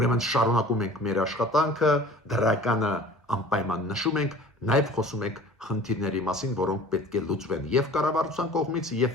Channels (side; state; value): both; normal; correlation 0.45